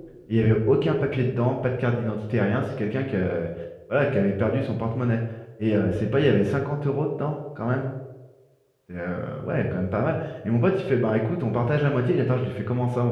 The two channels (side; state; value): both; identical; correlation 1.00